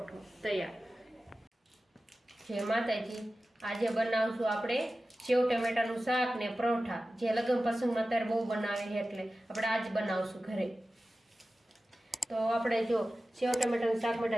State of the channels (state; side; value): normal; both; correlation 0.95